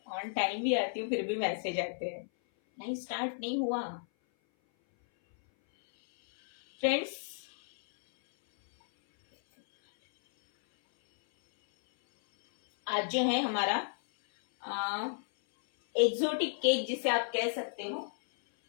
On time भी आती हूँ फिर भी मैसेज आते हैं, नहीं स्टार्ट नहीं हुआ। फ्रेंड्स, आज जो है हमारा एक्सोटिक केक जिसे आप कह सकते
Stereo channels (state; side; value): silent; right; 56 dB below the other